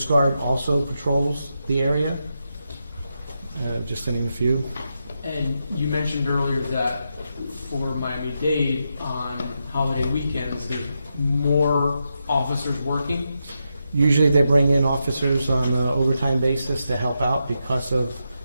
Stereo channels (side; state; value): both; inverted; correlation -0.85